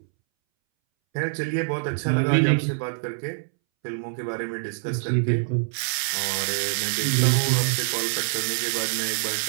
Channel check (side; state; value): left; silent; 62 dB below the other